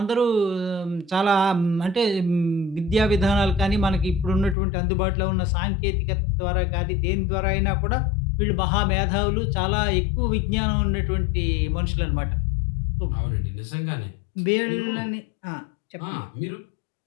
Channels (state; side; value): drops out; right; at 4.5 s